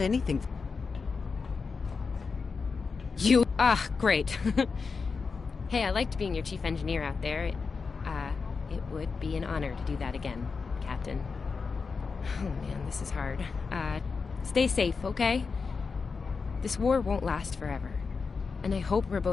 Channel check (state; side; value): quieter; right; 4.9 dB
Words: anything. Great. Hey, I liked being your chief engineer out there. It would be an honor to do that again, Captain. Oh man, this is hard. Stay safe, okay? This war won't last forever. And I hope we're